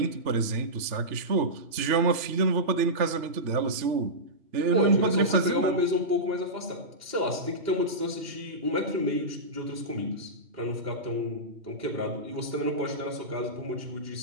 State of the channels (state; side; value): late; left; 3.3 ms